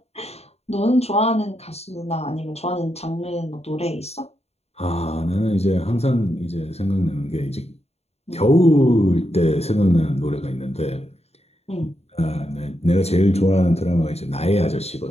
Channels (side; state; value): right; late; 0.30 ms